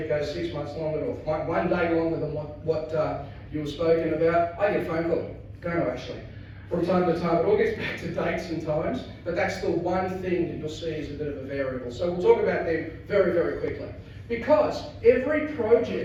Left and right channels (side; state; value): both; identical; correlation 1.00